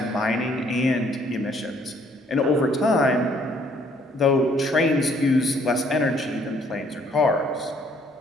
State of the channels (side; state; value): both; normal; correlation 0.64